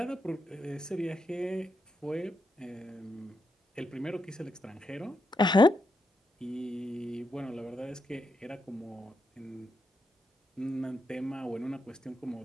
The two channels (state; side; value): normal; both; correlation 0.83